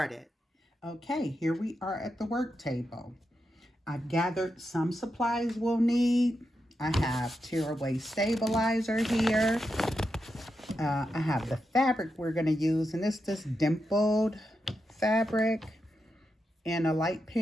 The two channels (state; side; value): normal; both; correlation 0.87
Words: Okay, here we are at the work table. I've gathered some supplies we'll need. I have tearaway stabilizer here. I have the fabric we're going to use, and it's this dimpled fabric in a light